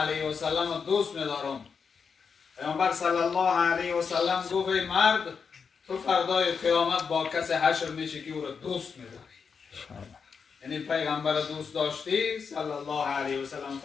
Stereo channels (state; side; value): quieter; right; 5.9 dB